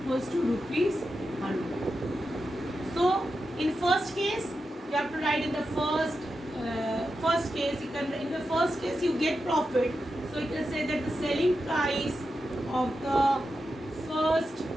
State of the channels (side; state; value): both; normal; correlation 0.89